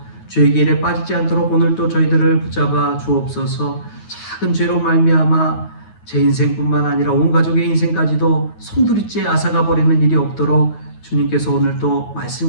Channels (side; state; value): right; late; 9.4 ms